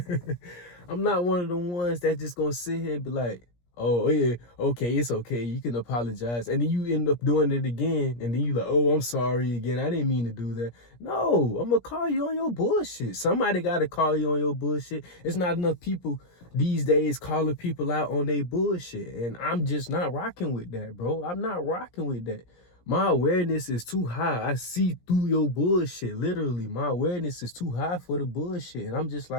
I'm not one of them ones that just gonna sit here and be like, oh yeah, okay, it's okay, you can apologize. And then you end up doing it again, and then you like, oh, I'm sorry again, I didn't mean to do that. No, I'm gonna call you on your bullshit. Somebody gotta call you on your bullshit. It's not enough people these days calling people out on their bullshit. And I'm just not rocking with that, bro. I'm not rocking with that. My awareness is too high. I see through your bullshit. Literally, my awareness is too high for the bullshit. And I'm just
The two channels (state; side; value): late; right; 17 ms